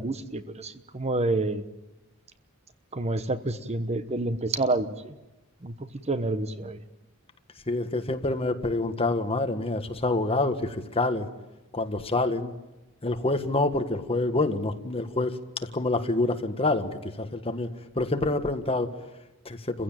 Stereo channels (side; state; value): both; normal; correlation 0.42